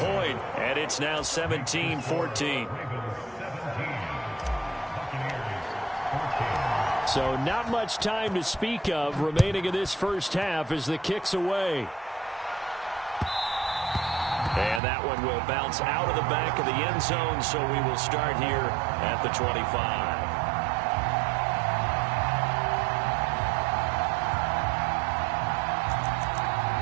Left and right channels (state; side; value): drops out; left; at 14.8 s